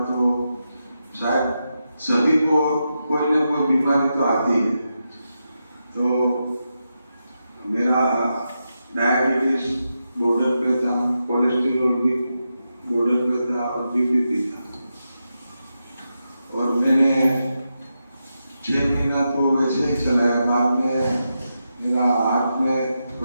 तो शायद सभी को कोई ना कोई बीमारी तो आती है। तो मेरा डायबिटीज बॉर्डर पे था, कोलेस्ट्रॉल भी बॉर्डर पे था और बीपी भी था। और मैंने 6 महीना तो वैसे ही चलाया। बाद में मेरा हाथ में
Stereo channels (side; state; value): both; inverted; correlation -0.87